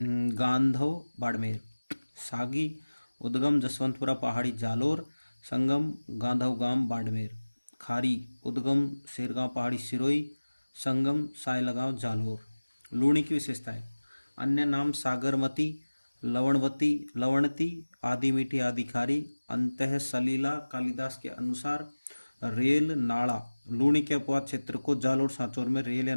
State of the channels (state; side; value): inverted; both; correlation -1.00